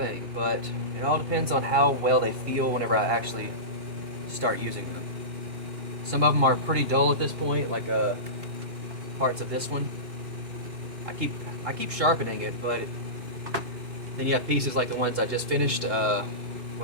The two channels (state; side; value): late; left; 2.8 ms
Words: but it all depends on how well they feel whenever I actually start using them. Some of them are pretty dull at this point, like parts of this one. I keep sharpening it, but then you have pieces like the ones I just finished, or